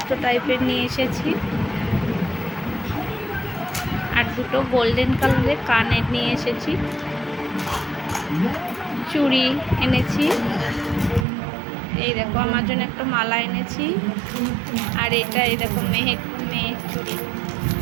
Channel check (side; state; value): left; drops out; at 11.2 s